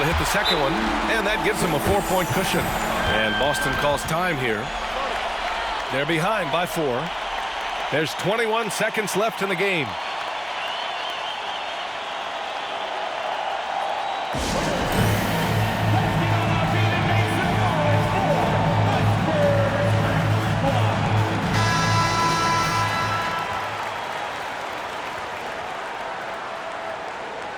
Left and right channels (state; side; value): identical; both; correlation 1.00